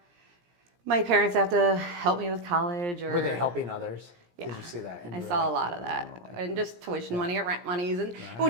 my parents to have to help me with college. Or Were they helping others? Yeah. Did you see that? And I you were saw like, a lot of that, and just tuition money or rent monies, and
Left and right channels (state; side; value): late; left; 17 ms